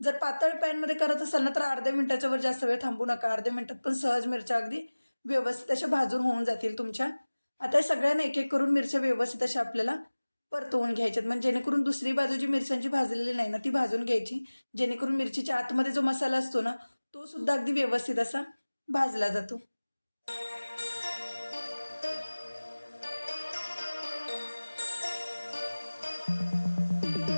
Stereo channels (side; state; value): both; inverted; correlation -1.00